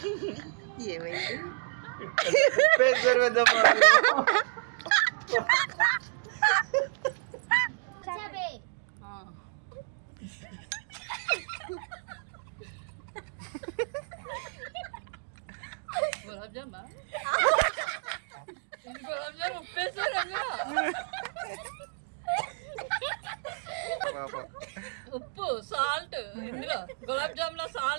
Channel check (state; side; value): silent; left; digital silence